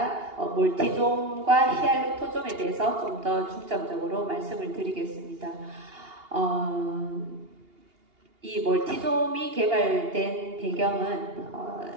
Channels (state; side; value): late; left; 2.8 ms